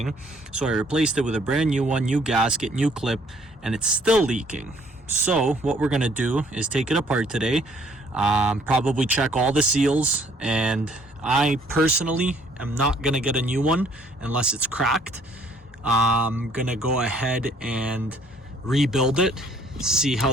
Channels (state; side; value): normal; both; correlation 0.62